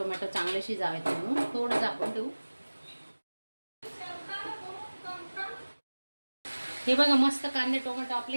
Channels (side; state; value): both; inverted; correlation -1.00